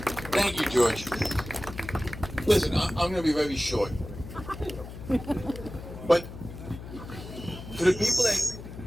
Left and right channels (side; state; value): left; noise; hum, 12 dB below the sound